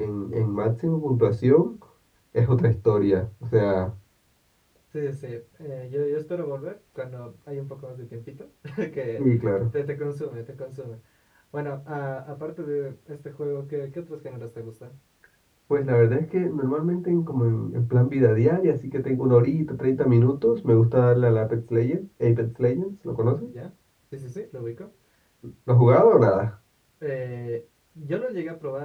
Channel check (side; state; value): both; identical; correlation 1.00